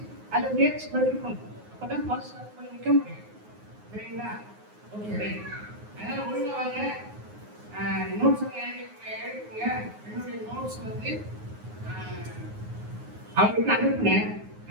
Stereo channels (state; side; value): late; left; 9.5 ms